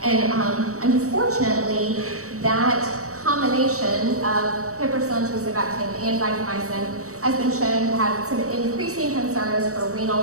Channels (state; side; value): late; left; 0.65 ms